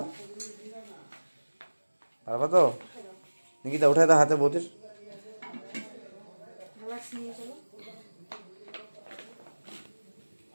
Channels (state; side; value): inverted; both; correlation -1.00